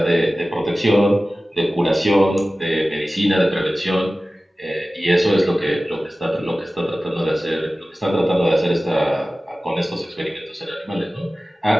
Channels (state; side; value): normal; both; correlation 0.96